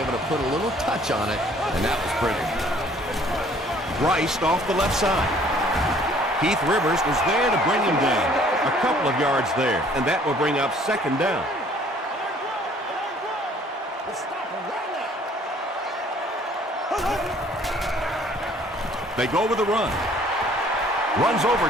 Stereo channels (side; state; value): both; normal; correlation 0.57